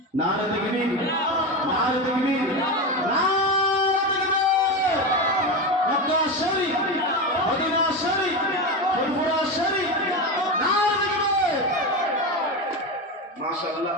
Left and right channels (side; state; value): both; normal; correlation 0.18